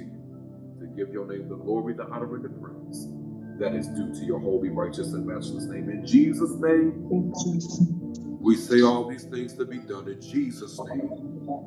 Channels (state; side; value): identical; both; correlation 1.00